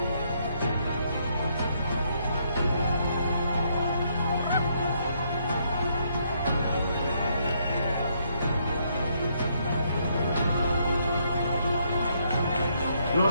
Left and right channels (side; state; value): both; inverted; correlation -0.72